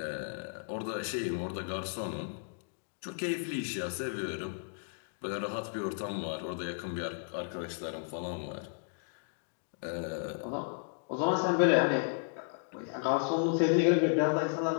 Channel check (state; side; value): silent; right; digital silence